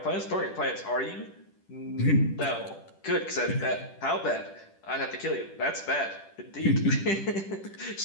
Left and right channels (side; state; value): right; late; 10 ms